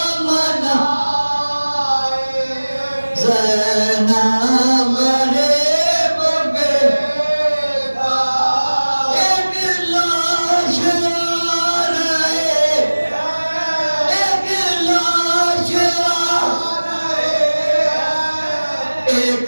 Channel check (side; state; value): both; inverted; correlation -1.00